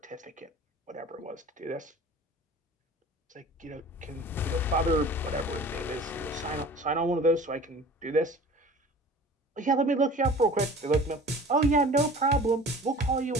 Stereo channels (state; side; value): normal; both; correlation 0.42